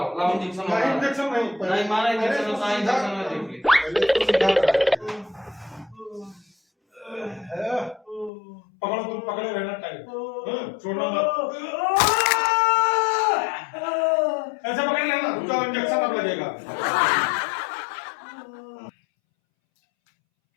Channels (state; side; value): drops out; right; at 8.3 s